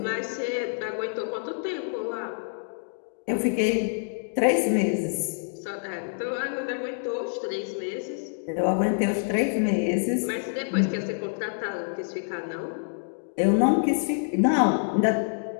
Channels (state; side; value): silent; right; digital silence